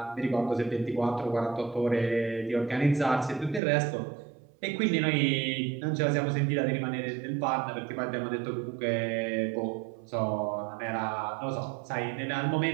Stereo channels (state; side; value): drops out; left; at 3.6 s